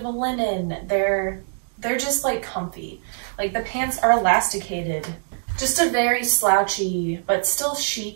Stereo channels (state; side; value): silent; left; 63 dB below the other